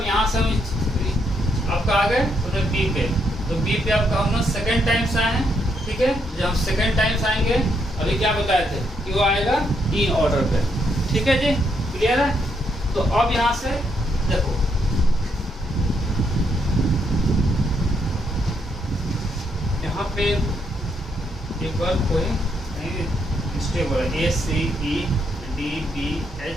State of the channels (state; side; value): normal; both; correlation 0.76